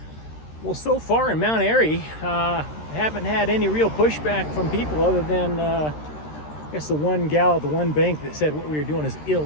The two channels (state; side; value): late; right; 13 ms